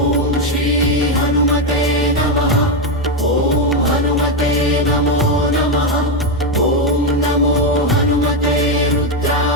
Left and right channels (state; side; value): normal; both; correlation 0.07